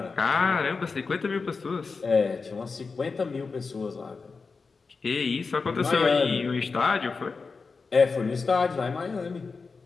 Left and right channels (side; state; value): right; quieter; 4.6 dB